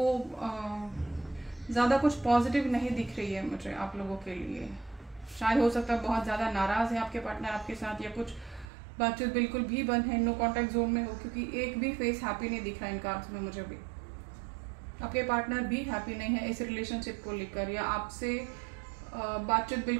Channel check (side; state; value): left; drops out; at 8.7 s